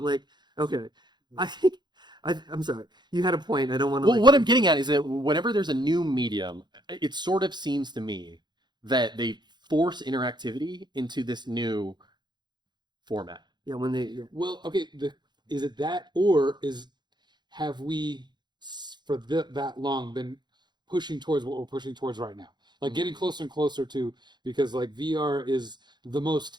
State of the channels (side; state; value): left; late; 0.21 ms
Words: okay, I think I'm sorry, you had a point. I don't want to. Well, what I'm getting at is that whenever there's a new medium, it sort of seems to me that they force interactivity into this new format. Yeah, when they. Yeah. Well, okay, is it that, or have we for that long been pushing towards what we're pushing towards right now? Like getting closer and closer to, because like VR is the most